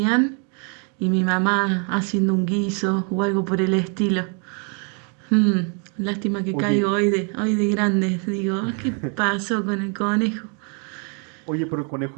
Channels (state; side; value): quieter; left; 38.3 dB